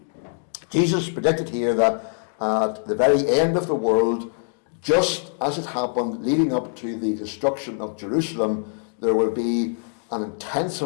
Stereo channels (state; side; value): silent; right; 61 dB below the other